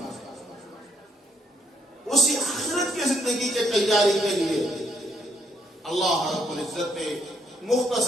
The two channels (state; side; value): normal; both; correlation 0.71